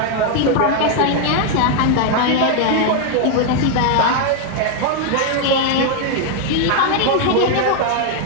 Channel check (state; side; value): different; both; correlation 0.00